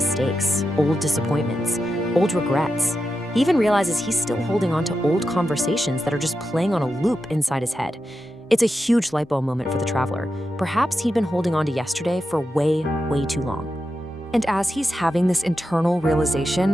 old disappointments, old regrets. He even realizes he's still holding on to old conversations that are just playing on a loop inside his head. It's a huge light bulb moment for the traveler. Perhaps he'd been holding on to yesterday for way, way too long. And as he's having this internal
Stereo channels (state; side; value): normal; both; correlation 0.89